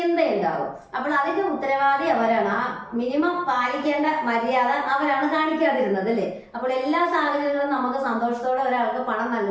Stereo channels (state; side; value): identical; both; correlation 1.00